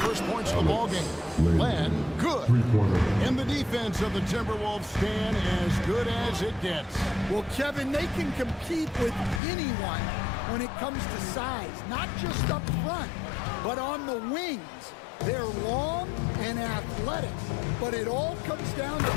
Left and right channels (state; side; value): drops out; right; at 9.4 s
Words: points of the ballgame. Len, good. And the defense of the Timberwolves stand as good as it gets. Well, Kevin, they can compete with anyone when it comes to size, not just up front, but on the wings. They're long and athletic, but it all comes down to